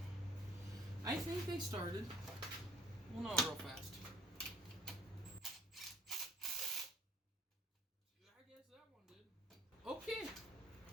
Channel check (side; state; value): both; normal; correlation 0.55